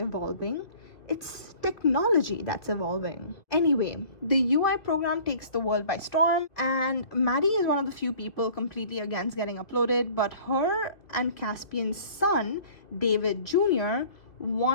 It's technology that's evolving. Anyway, the UI program takes the world by storm, and Maddie is one of the few people completely against getting uploaded, but her and Caspian's son, David Jr.,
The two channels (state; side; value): late; right; 2.2 ms